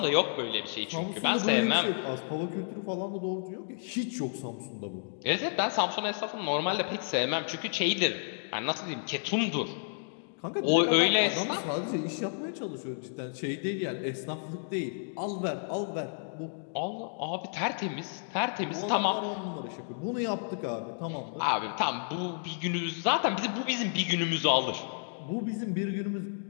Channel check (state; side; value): silent; right; digital silence